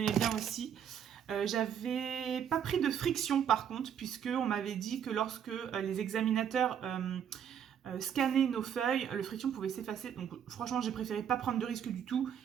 bien aussi. J'avais pas pris de friction par contre, puisqu'on m'avait dit que lorsque les examinateurs scannaient nos feuilles, le friction pouvait s'effacer. Donc franchement, j'ai préféré pas prendre de risque du tout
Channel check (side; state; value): left; quieter; 8.7 dB